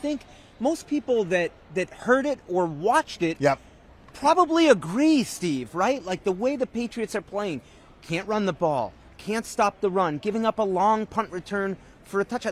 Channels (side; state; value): both; identical; correlation 1.00